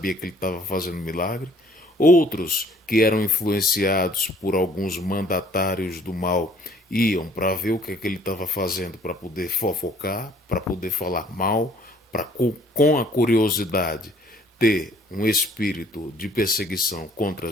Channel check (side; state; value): both; normal; correlation 0.58